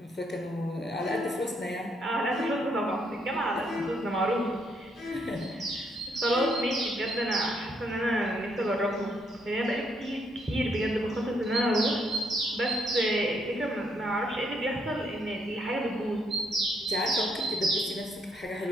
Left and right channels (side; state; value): both; normal; correlation 0.73